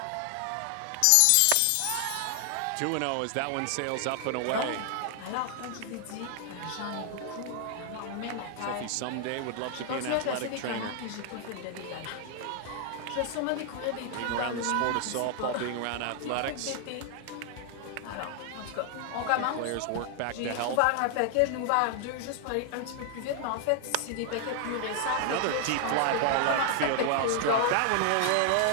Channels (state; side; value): different; both; correlation 0.00